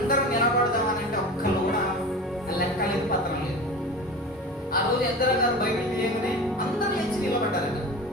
నిలబడదామనంటే ఒక్కరు కూడా లెక్క లేదు, పత్రం లేదు. ఆ రోజు ఎజ్రా గారు బైబిల్ తీయగానే అందరూ లేచి నిలబడ్డారట.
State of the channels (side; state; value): both; normal; correlation 0.33